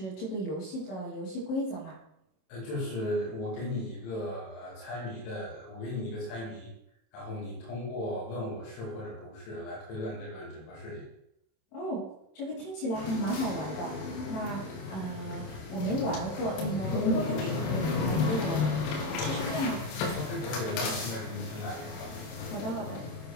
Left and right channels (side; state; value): right; late; 26 ms